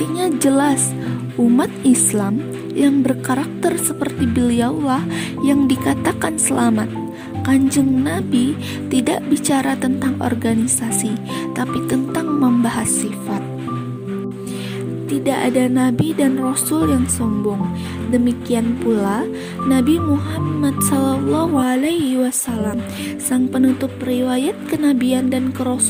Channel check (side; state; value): both; identical; correlation 1.00